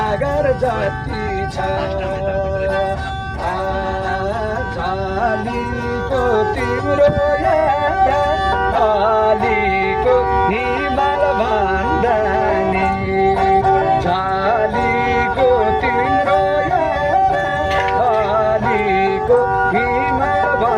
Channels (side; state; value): both; identical; correlation 1.00